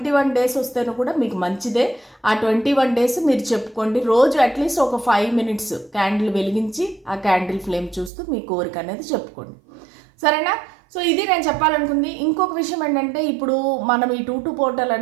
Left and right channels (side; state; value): left; drops out; at 8.1 s